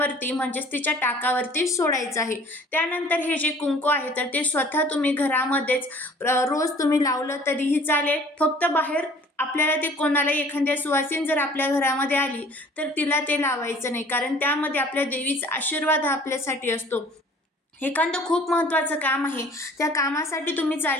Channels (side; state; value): both; normal; correlation 0.51